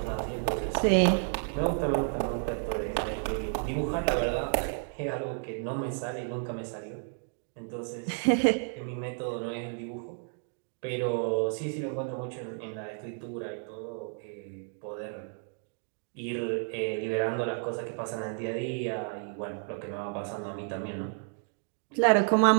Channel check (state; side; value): silent; left; 57 dB below the other